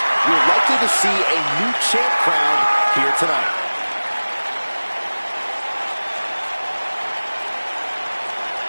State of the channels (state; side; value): inverted; both; correlation -1.00